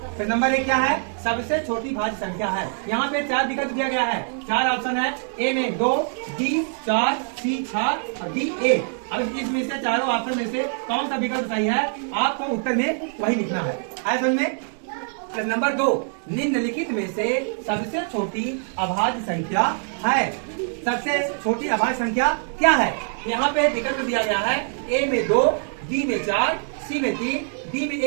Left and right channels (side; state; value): left; silent; 63 dB below the other